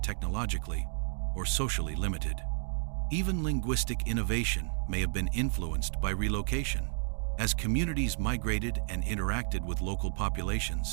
technologically or socially limited. Even linguistic innovation may have been influenced by relocation. As communities migrated and interacted with local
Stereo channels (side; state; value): left; silent; 57 dB below the other